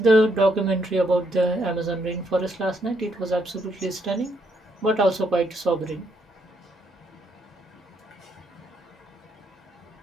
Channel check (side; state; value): both; normal; correlation 0.74